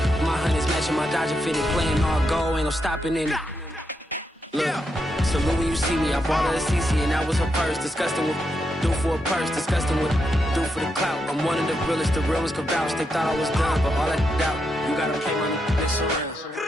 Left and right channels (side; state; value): both; normal; correlation 0.83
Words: My honey's matching my Dodger fitted, playing all gold, ain't no stopping in it. Look, salute when you see me, I bought her a CC and that was her purse. Disgusting what do for a purse, disgusting what do for the clout. I'm one of the realest, the real ones could vouch. They thought I was done, but all I doubt, you gotta play money, mix around.